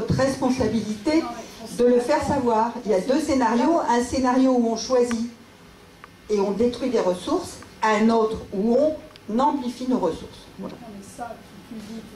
responsabilité de le faire savoir. Il y a 2 scénarios. Un scénario où on choisit et on détruit des ressources, un autre où on amplifie nos ressources. Voilà. Non, mais ça, tu le dis, tu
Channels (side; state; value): both; identical; correlation 1.00